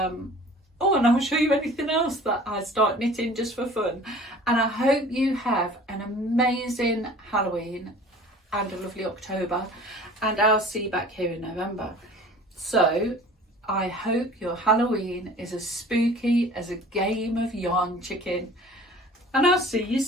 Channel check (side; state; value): both; normal; correlation 0.46